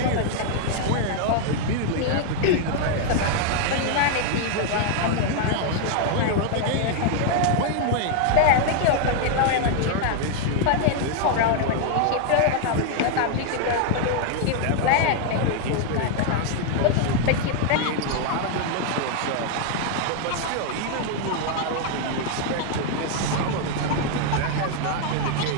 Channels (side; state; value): both; different; correlation 0.00